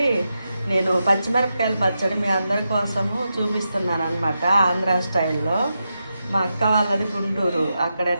నేను పచ్చిమిరపకాయల పచ్చడి మీ అందరి కోసము చూపిస్తున్నాను అనమాట. ఆంధ్ర స్టైల్లో. మా అక్క వాళ్ళది గుంటూరు. అక్కడ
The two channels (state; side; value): inverted; both; correlation -0.87